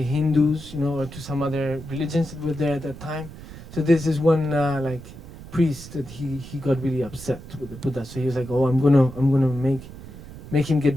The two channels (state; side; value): noise; right; rumble, 15 dB below the sound